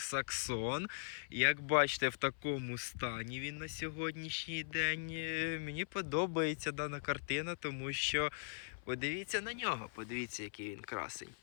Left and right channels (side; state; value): right; silent; 51 dB below the other